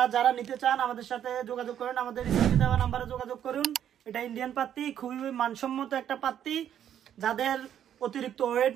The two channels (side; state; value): left; quieter; 10.0 dB